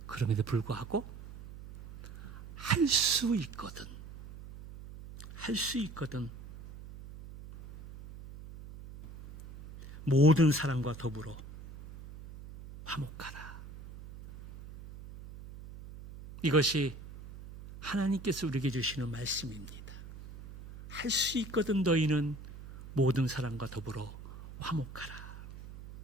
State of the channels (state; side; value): noise; right; hum, 14 dB below the sound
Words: 그럼에도 불구하고 할 수 있거든. 할 수 있거든. 모든 사람과 더불어 화목하라. 이것이 하나님께서 우리에게 주시는 말씀입니다. 할 수 있거든 너희는 모든 사람과 더불어 화목하라.